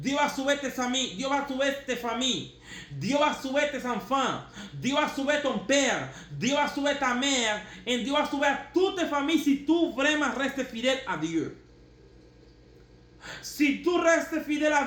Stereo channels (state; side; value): identical; both; correlation 1.00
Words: va sauver tes amis, Dieu va sauver tes familles, Dieu va sauver tes enfants, Dieu va sauver ton père, Dieu va sauver ta mère, et Dieu va sauver toutes tes familles si tu vraiment restes fidèle à Dieu. Si tu restes fidèle à